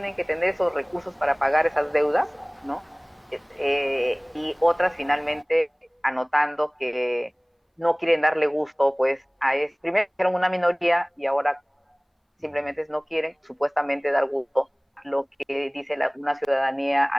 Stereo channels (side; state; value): both; identical; correlation 1.00